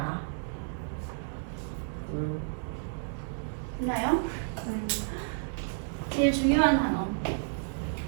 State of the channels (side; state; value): left; silent; 57 dB below the other